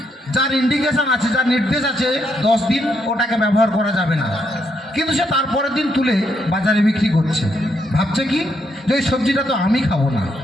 যার ইন্ডিকেশন আছে, যার নির্দেশ আছে 10 দিন ওটাকে ব্যবহার করা যাবে না, কিন্তু সে তারপরের দিন তুলে বাজারে বিক্রি করছে। ভাবছে কি যে ওই সবজিটা তো আমি খাবো না।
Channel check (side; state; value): both; normal; correlation 0.77